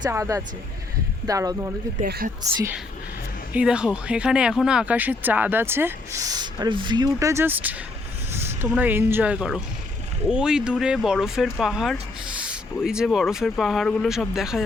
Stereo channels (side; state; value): right; quieter; 3.2 dB